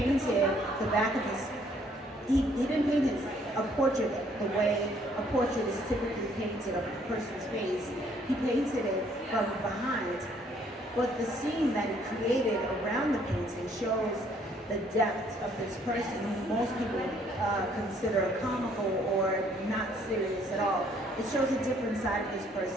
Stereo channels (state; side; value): normal; both; correlation 0.64